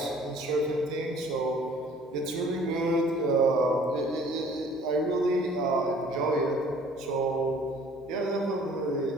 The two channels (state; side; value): normal; both; correlation 0.54